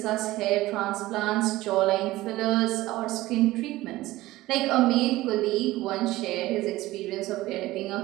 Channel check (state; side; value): quieter; left; 17.5 dB